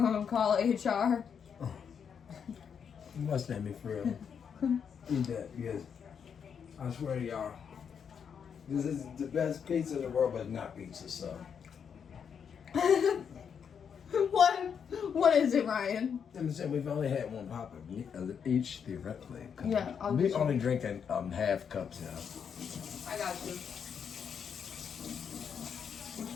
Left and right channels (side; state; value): right; quieter; 7.2 dB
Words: call HR? You must make me for real. Eat that, because I swear to y'all, This is the best pizza in the world, but not pizza, so. What is it, Ryan? I'm saying we've only had one pop each theoretically. Yeah, I'll we get only you. drinking half cups now. I got you. Which